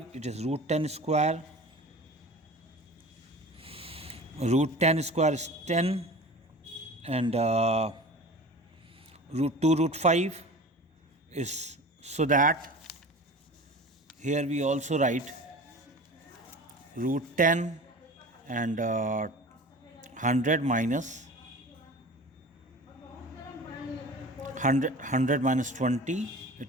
it is root 10 square. Root 10 square is 10, and root 2 root 5 is, so that here we also write root 10 and 100 minus 100 minus 20,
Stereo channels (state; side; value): normal; both; correlation 0.37